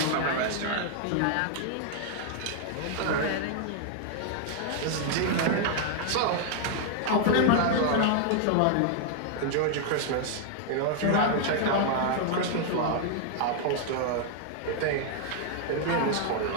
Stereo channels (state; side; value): different; both; correlation 0.00